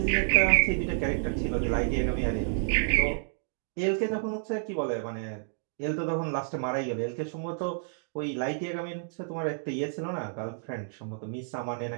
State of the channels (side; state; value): left; silent; digital silence